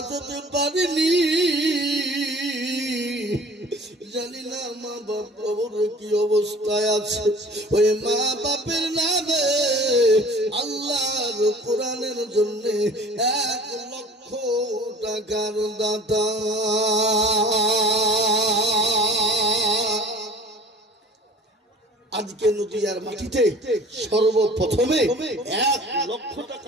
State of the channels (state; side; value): normal; both; correlation 0.46